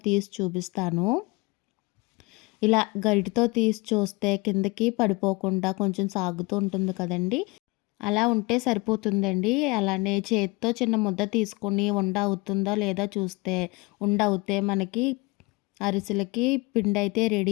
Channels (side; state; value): right; quieter; 24.9 dB